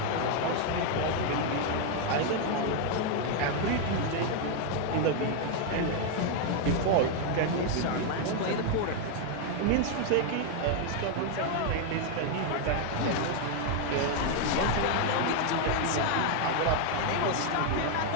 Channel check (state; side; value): different; both; correlation 0.01